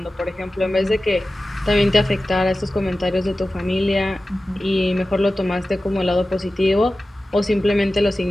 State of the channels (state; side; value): normal; both; correlation 0.95